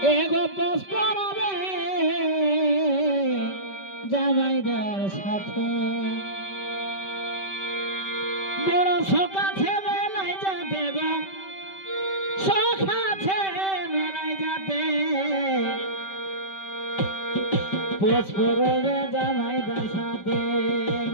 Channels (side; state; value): right; late; 5.2 ms